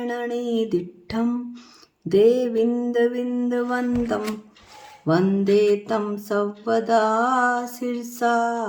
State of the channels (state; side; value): identical; both; correlation 1.00